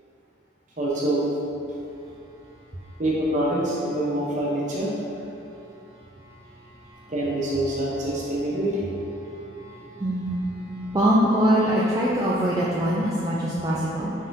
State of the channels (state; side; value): normal; both; correlation 0.59